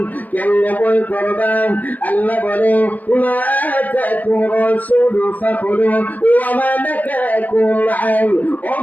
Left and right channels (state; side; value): late; right; 0.080 ms